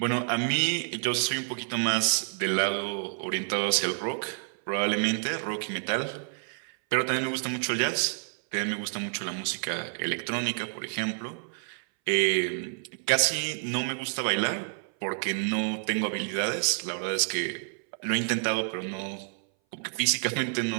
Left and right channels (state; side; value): silent; left; 58 dB below the other